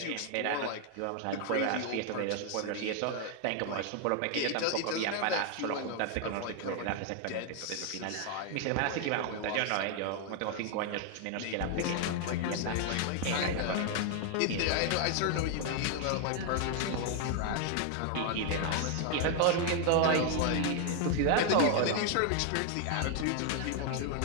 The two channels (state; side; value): different; both; correlation 0.00